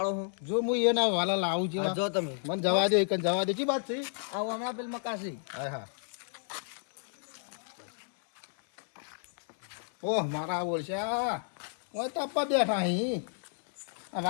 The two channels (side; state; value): right; silent; 57 dB below the other